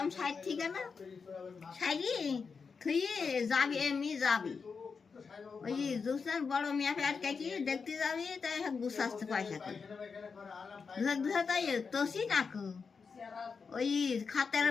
সাইড থেকে না সাইডি তুই যাবি এমনি যাবি ওই দুসরার বড় মিয়া ফের কি দেখতে যাবি তাই গুছাচ্ছে পয়সা করে দুসরা তাই তোষি নাকু ওই খাতের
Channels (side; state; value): right; quieter; 5.3 dB